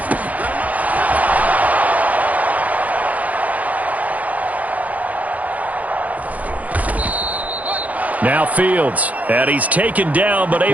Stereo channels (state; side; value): late; left; 0.074 ms